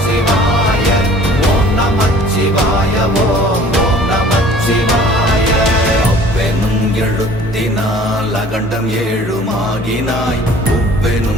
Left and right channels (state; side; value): normal; both; correlation 0.50